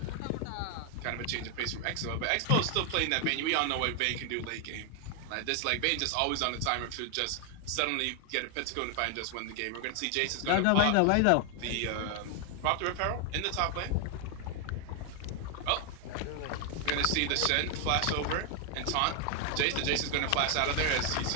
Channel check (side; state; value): both; different; correlation 0.00